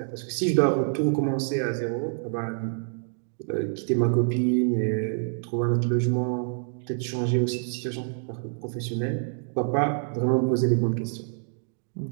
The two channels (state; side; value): silent; left; 60 dB below the other